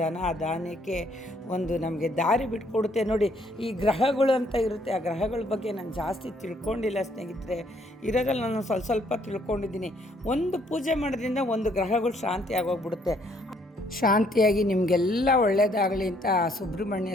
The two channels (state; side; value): normal; both; correlation 0.67